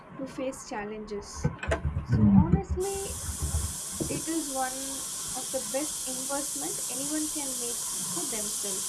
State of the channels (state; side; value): identical; both; correlation 1.00